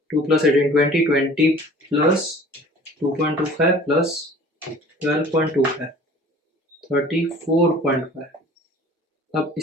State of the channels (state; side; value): normal; both; correlation 0.47